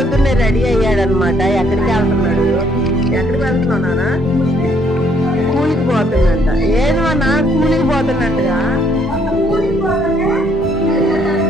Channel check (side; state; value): both; normal; correlation 0.68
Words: రెడీ అయ్యాడనమాట. ఎక్కడికి వెళ్తున్నాడు? ఎక్కడికి వెళ్తున్నావు నాన్న? కూలికి పోతున్నట్ట. ఏది నాన్న కూలికి పోతున్నట్టుగా